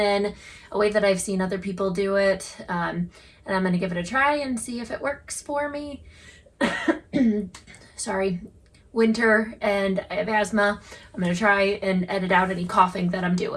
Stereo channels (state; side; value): identical; both; correlation 1.00